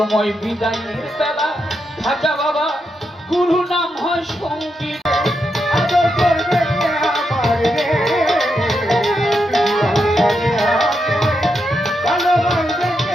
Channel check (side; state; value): both; normal; correlation 0.83